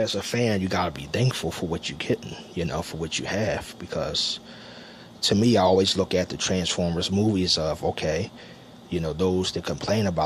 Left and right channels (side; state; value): both; identical; correlation 1.00